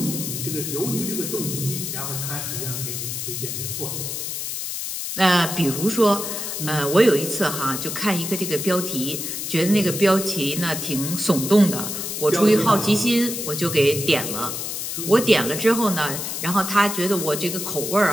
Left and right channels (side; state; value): left; noise; hiss, 4 dB below the sound